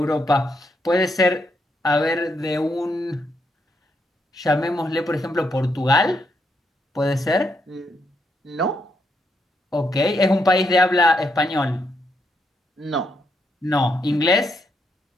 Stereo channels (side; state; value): both; normal; correlation 0.78